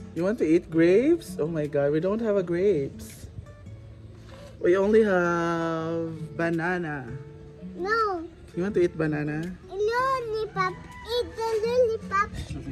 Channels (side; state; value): both; identical; correlation 1.00